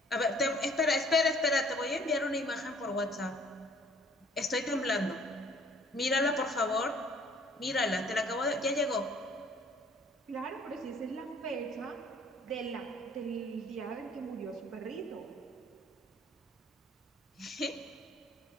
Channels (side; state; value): both; normal; correlation 0.58